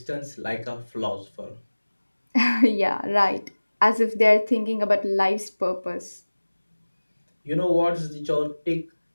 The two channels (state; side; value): inverted; both; correlation -1.00